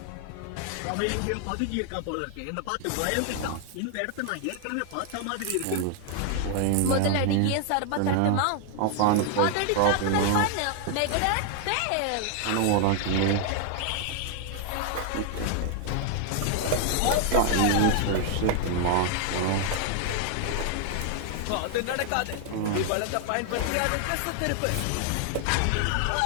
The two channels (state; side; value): different; both; correlation 0.00